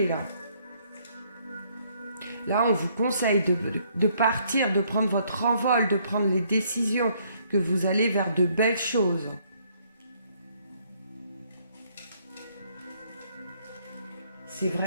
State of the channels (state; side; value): inverted; both; correlation -0.67